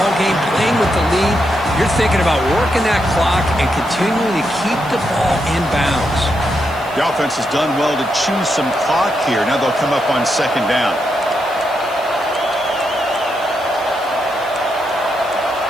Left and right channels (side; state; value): left; noise; hiss, 23 dB below the sound